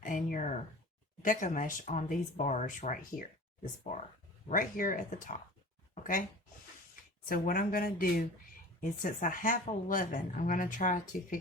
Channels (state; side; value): normal; both; correlation 0.40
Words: and your deco mesh on these bars right here. This bar right here at the top. Okay. So what I'm going to do is, since I have 11, I'm going to try to